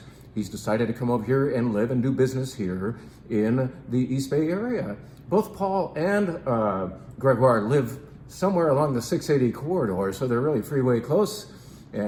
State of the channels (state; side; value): identical; both; correlation 1.00